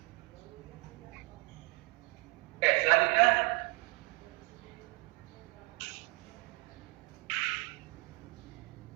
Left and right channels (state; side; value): quieter; left; 27.6 dB